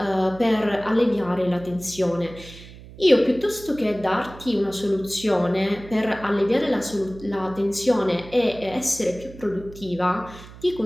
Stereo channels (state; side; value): noise; right; hum, 17 dB below the sound